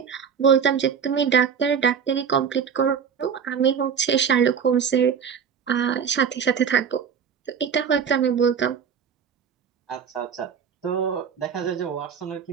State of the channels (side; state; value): left; quieter; 7.2 dB